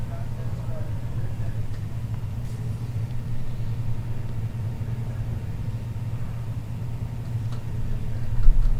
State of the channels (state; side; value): identical; both; correlation 1.00